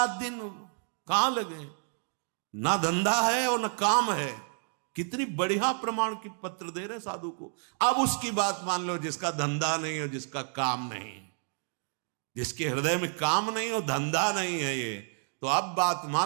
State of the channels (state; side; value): silent; left; 58 dB below the other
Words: दिन कहां लगे, ना धंधा है और ना काम है। कितनी बढ़िया प्रमाण की पत्र दे रहे साधु को। अब उसकी बात मान लो, जिसका धंधा नहीं और जिसका काम नहीं, जिसके हृदय में काम नहीं और धंधा नहीं है ये, तो अब बात